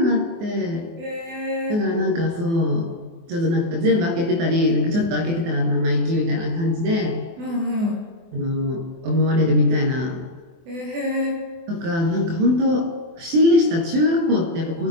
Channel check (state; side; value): late; left; 24 ms